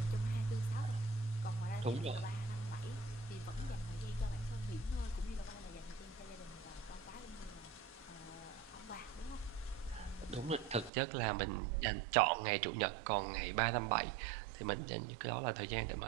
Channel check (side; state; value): left; drops out; at 10.9 s